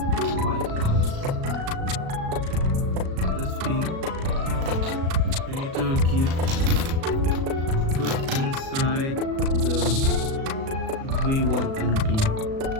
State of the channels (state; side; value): late; left; 37 ms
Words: This pin. You need to put inside the V1 and P.